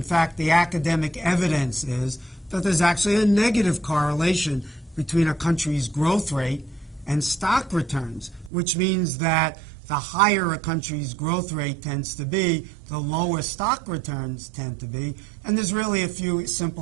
fact, the academic evidence is that there's actually a negative correlation between a country's growth rate and stock returns, which means that the higher a country's growth rate tends to be, the lower stock returns tend to be. And there's really a few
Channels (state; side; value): drops out; left; at 8.5 s